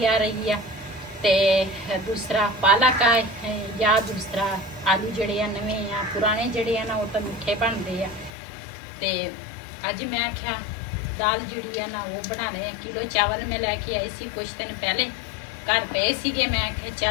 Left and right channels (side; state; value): right; drops out; at 8.3 s